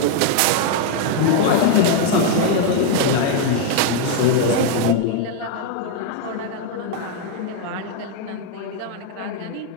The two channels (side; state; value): both; different; correlation 0.00